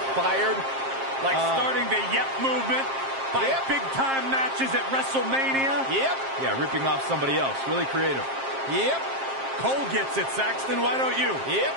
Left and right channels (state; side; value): late; left; 7.5 ms